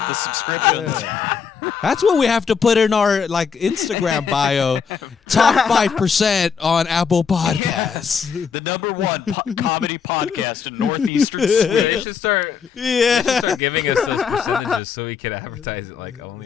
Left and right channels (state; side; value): quieter; right; 6.4 dB